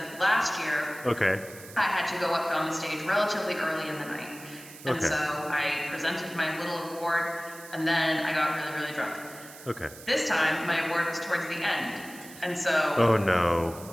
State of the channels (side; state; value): right; noise; hiss, 17 dB below the sound